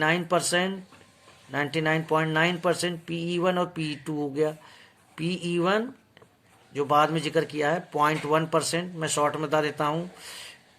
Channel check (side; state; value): both; identical; correlation 1.00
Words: 99.9% PE1 और PE2 हो गया। PE1 जो बाद में जिक्र किया है 0.1%, मैं शॉर्ट में बता देता हूँ।